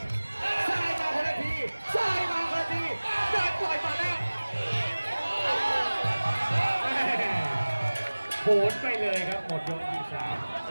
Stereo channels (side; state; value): both; inverted; correlation -1.00